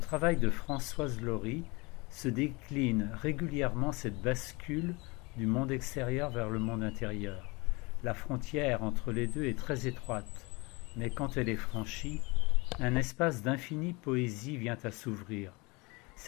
de Françoise Laurie se décline régulièrement cette bascule du monde extérieur vers le monde intérieur. La frontière entre les deux est très étroite, mais quand elle est franchie, un espace d'infinie poésie vient à s'ouvrir.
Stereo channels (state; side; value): quieter; right; 26.2 dB